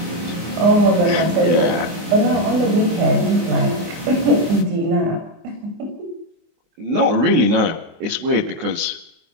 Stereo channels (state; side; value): late; left; 24 ms